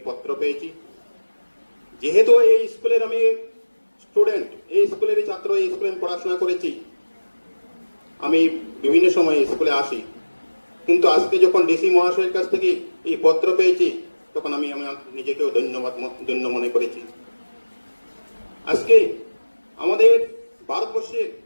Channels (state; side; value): inverted; both; correlation -1.00